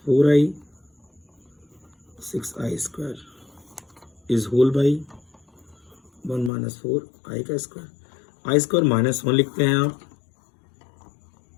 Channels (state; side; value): drops out; right; at 6.5 s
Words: 4i 6i² is whole by 1 - 4i² i² -1 लिखते हैं आप।